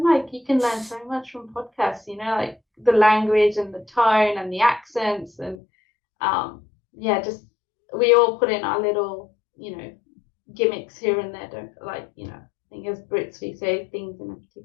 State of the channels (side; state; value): right; drops out; at 5.6 s